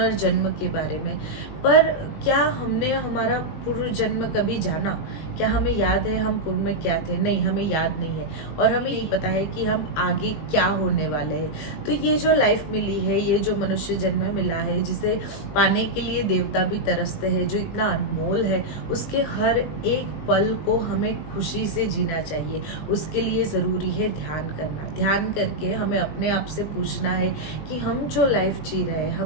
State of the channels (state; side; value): late; right; 20 ms